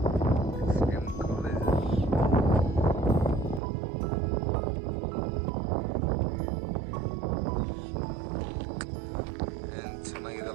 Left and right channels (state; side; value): drops out; left; at 3.6 s